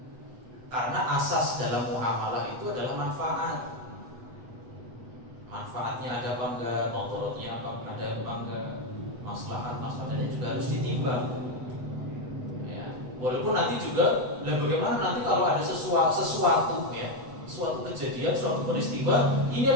Karena asas dalam muamalah itu adalah manfaat. Manfaatnya ada apa enggak, motorotnya apa enggak, maslahatnya juga harus ditimbang. Ya. Walaupun nanti juga, bagaimana nanti kalau ada sesuatu ya, suatu kejadian, suatu peristiwa, ini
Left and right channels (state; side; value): late; left; 8.0 ms